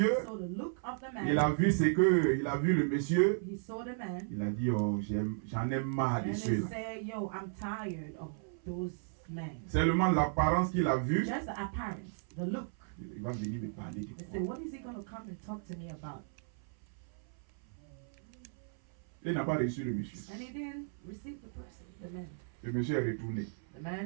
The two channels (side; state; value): left; silent; 54 dB below the other